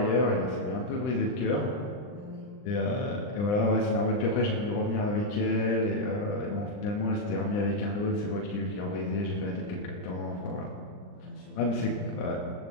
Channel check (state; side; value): late; right; 39 ms